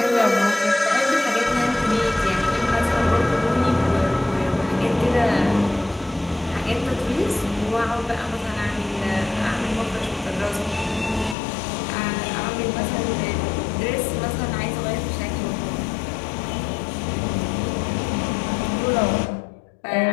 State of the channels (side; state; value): right; drops out; at 11.4 s